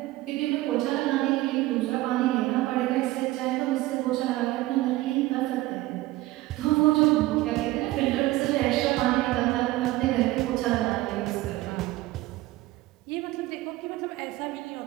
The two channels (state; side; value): quieter; left; 17.9 dB